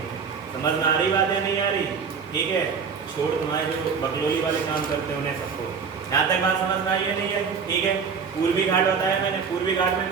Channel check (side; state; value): left; quieter; 6.0 dB